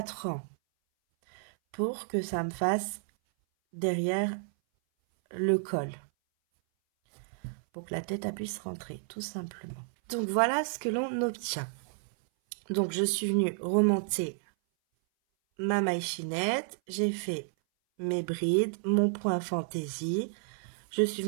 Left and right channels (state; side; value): silent; left; 57 dB below the other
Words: rangs pour que ça me fasse derrière le col. Pour que la tête puisse rentrer, tout simplement. Donc, voilà ce que l'on obtient. Donc, je suis venue remonter ma maille chaînette, j'ai fait mes brides, mon point fantaisie, je suis